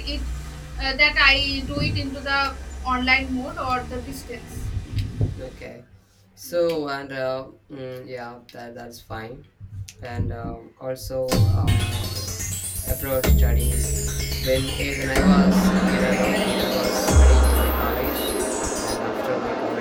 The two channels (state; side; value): identical; both; correlation 1.00